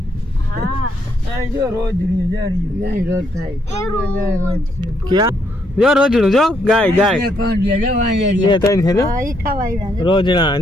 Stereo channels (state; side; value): normal; both; correlation 0.74